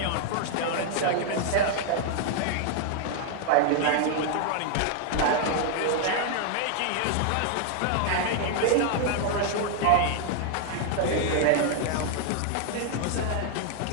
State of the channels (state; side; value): different; both; correlation 0.00